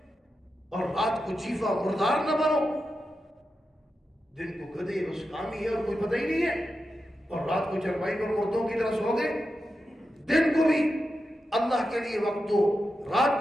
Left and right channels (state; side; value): normal; both; correlation 0.89